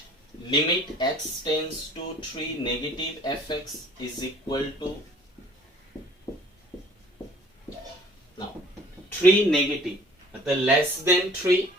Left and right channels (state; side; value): normal; both; correlation 0.53